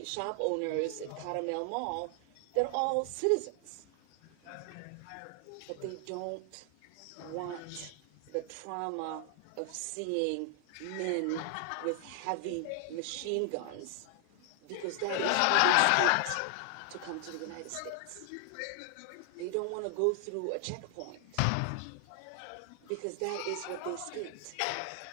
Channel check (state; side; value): different; both; correlation 0.00